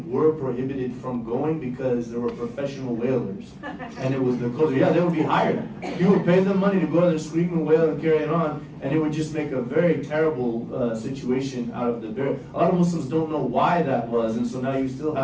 were prohibited from going because there were professional wailers. And it was the closer. Yeah, they would be hired. You would pay them money to go out there, scream and wail and carry it on, and it would just make a very terrible situation out of the burial. A lot of Muslims don't know why that was, and so now you still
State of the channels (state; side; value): identical; both; correlation 1.00